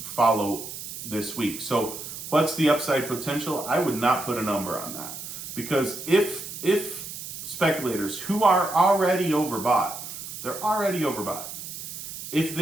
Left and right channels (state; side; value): noise; right; hiss, 9 dB below the sound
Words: follow this week. So what's the upside potential? I would not put a number on that, because if speculators who are already overbought, if